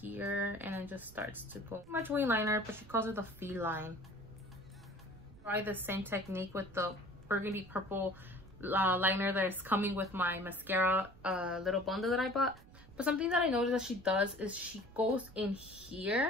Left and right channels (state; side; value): noise; right; rumble, 21 dB below the sound